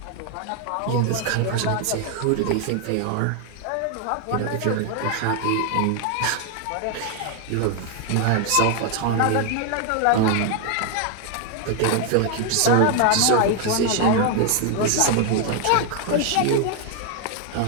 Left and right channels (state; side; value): different; both; correlation 0.00